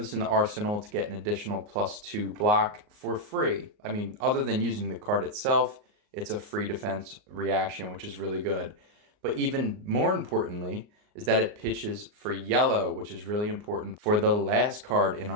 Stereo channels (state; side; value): late; left; 38 ms